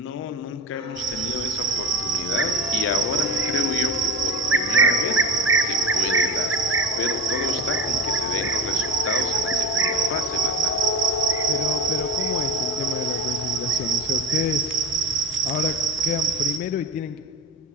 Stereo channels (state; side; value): normal; both; correlation 0.22